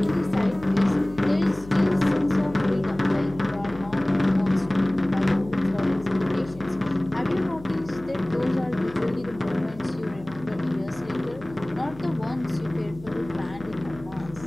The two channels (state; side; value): noise; left; hum, 18 dB below the sound